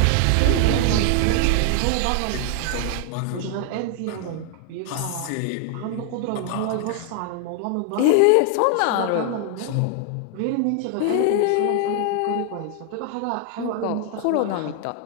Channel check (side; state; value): both; different; correlation 0.00